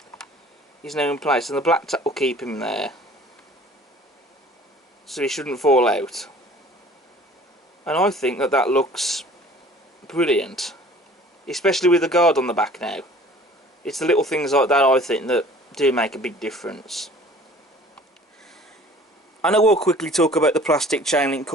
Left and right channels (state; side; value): normal; both; correlation 0.49